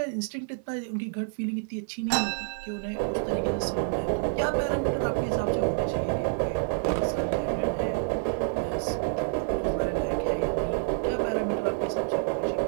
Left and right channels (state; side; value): silent; left; digital silence